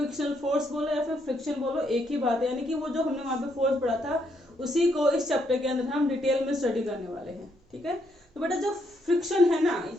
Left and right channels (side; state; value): both; normal; correlation 0.74